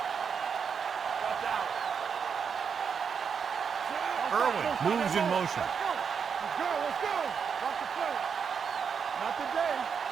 Watch out. Irwin moves in motion. Let's go. Let's go. Watch the play. Not today.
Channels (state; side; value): quieter; left; 6.5 dB